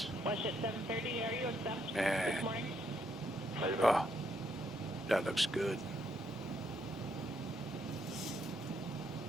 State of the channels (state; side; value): normal; both; correlation 0.74